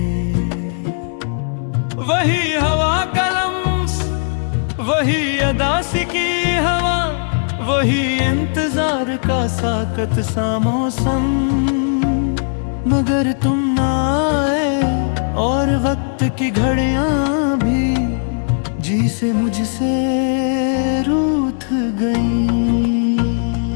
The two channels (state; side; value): silent; right; 68 dB below the other